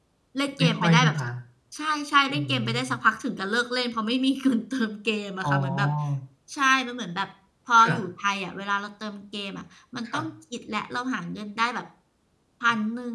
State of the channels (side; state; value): both; identical; correlation 1.00